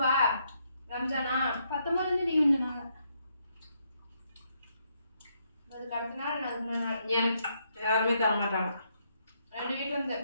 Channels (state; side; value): inverted; both; correlation -0.75